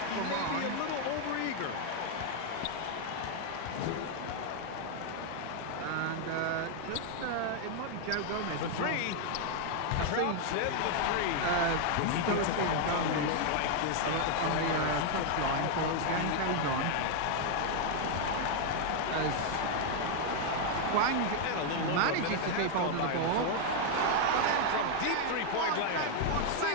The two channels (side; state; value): both; different; correlation 0.00